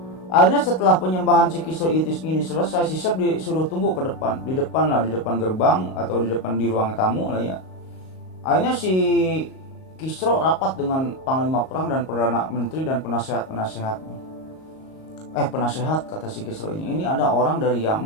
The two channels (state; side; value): late; right; 38 ms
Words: Akhirnya setelah penyembahan si Kisro itu ini selesai, si Sep disuruh tunggu ke depan, di depan gerbang atau di depan di ruang tamu lah ya. Akhirnya si Kisro rapat dengan panglima perang dan perdana menteri dan penasehat kata si Kisro ini ada orang dari